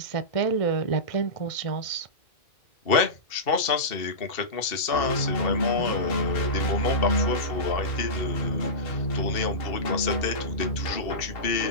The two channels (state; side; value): late; right; 2.7 ms